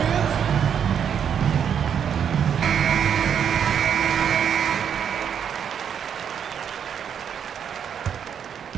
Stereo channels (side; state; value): left; quieter; 8.1 dB